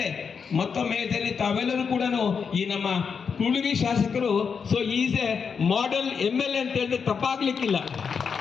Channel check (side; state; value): right; quieter; 6.1 dB